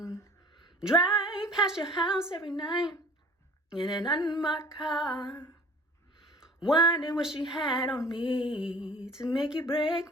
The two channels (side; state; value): both; normal; correlation 0.47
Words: Drive past your house every night in an unmarked car, wondering what she had on me to make you break